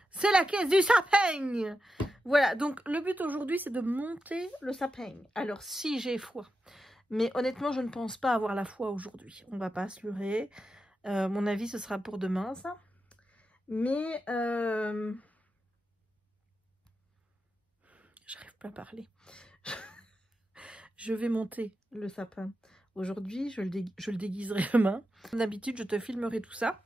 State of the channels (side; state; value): both; normal; correlation 0.89